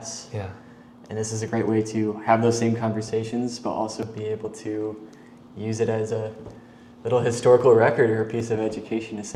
Yeah. And this is a great way to have those same conversations, but also be able to use it as a little historical record or a piece of education to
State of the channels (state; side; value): identical; both; correlation 1.00